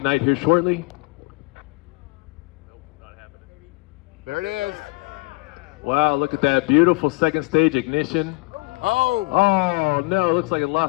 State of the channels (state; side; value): quieter; right; 27.0 dB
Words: here shortly. There it is. Wow, look at that beautiful second stage ignition. Oh! Oh no, looks like it